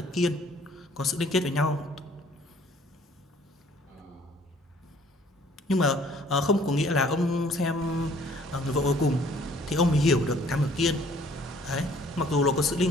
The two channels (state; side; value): normal; both; correlation 0.57